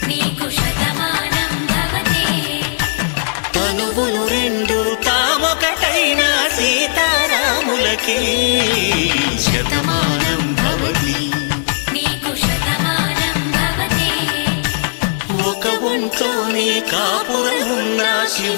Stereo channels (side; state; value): right; silent; digital silence